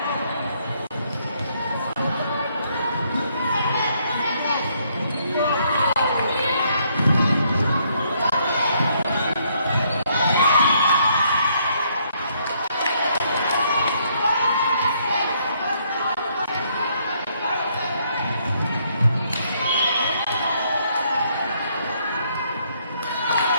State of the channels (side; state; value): both; inverted; correlation -0.70